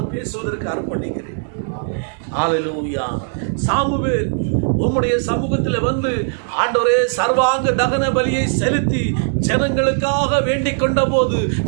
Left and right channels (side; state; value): left; silent; 67 dB below the other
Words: பேசுவதற்கு அர்ப்பணிக்கிறேன். ஹல்லேலூயா. சாமுவேல் உம்முடைய சமூகத்தில் வந்து ஆண்டவரே சர்வாங்க தகன பலியை செலுத்தி ஜனங்களுக்காக வேண்டிக் கொண்ட போது